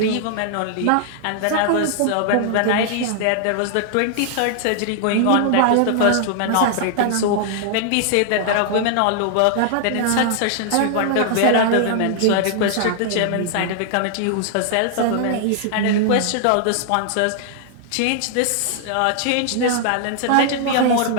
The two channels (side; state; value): both; different; correlation -0.01